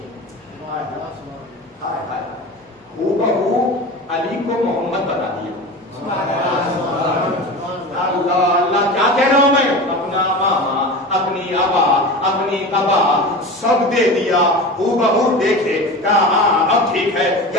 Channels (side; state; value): both; normal; correlation 0.31